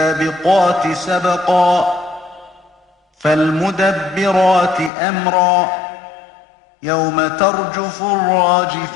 سبقا فالمدبرات أمرا يوم ترجف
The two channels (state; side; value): drops out; right; at 4.9 s